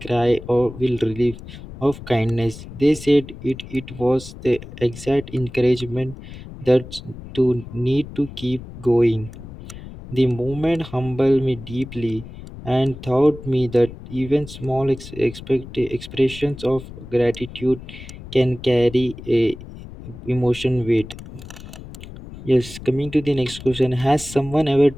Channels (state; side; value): noise; left; rumble, 14 dB below the sound